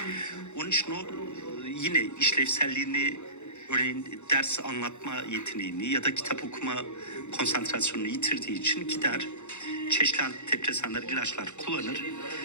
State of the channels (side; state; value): right; late; 0.83 ms